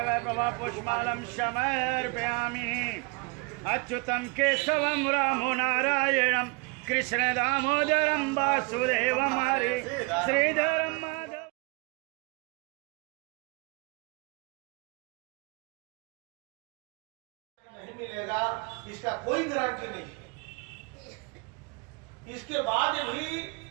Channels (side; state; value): left; quieter; 29.2 dB